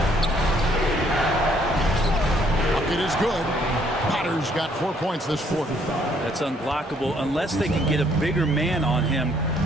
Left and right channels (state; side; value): normal; both; correlation 0.66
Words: It is good. Potter's got 4 points this quarter. That's unblockable unless they can get a bigger man on him.